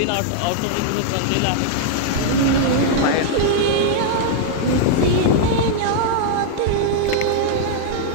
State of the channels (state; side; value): different; both; correlation -0.01